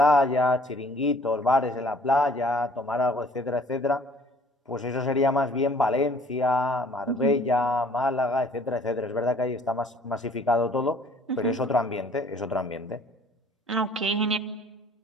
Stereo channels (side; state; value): both; normal; correlation 0.55